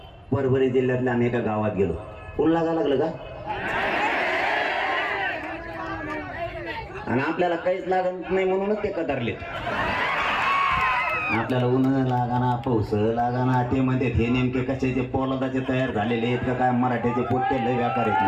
परभणी जिल्ह्यातल्या आम्ही एका गावात गेलो. ऊन लागायला लागलं का? आणि आपल्याला काहीच लागत नाही म्हणूनच ते कदरले. आपल्याला ऊन लागाना, पाऊस लागाना, ते म्हणतात हे नेमके कशाचे पोलादाचे तयार झालेले आहेत का काय, मराठ्याचे पोट्टे लय व्यापार आहेत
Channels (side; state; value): both; identical; correlation 1.00